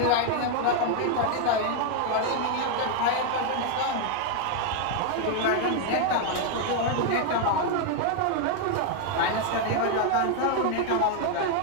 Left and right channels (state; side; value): different; both; correlation 0.00